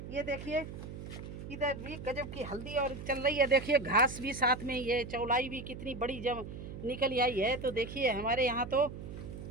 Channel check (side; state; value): right; noise; hum, 10 dB below the sound